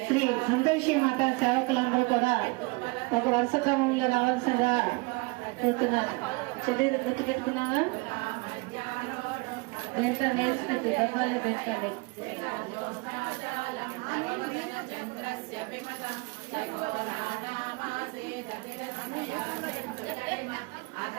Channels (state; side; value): quieter; left; 27.6 dB